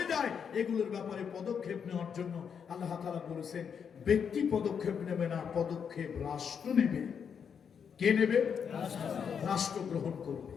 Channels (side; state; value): right; quieter; 7.1 dB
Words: যায় এগুলোর ব্যাপারে পদক্ষেপ নেওয়ার জন্য আল্লাহ তাআলা বলেছেন ব্যক্তি পদক্ষেপ নেবে না পদক্ষেপ রাষ্ট্র নেবে কে নেবে রাষ্ট্র গ্রহণ করবে